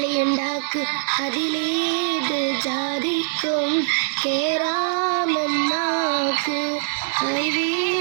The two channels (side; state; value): left; silent; digital silence